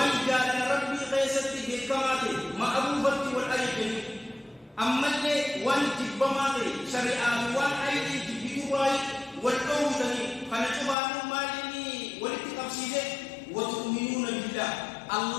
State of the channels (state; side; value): drops out; right; at 11.0 s